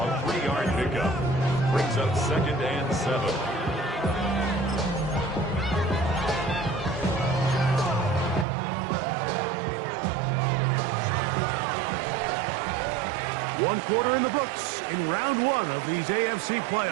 3-yard pickup. Brings up 2nd and 7. One quarter in the books in round 1 of these AFC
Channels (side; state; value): left; drops out; at 8.5 s